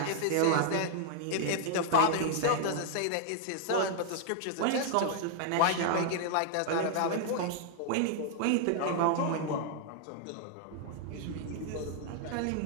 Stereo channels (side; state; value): both; different; correlation -0.01